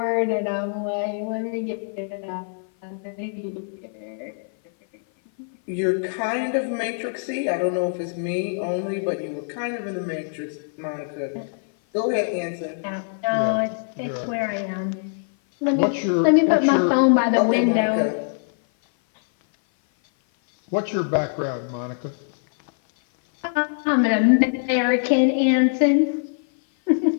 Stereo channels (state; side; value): silent; right; 57 dB below the other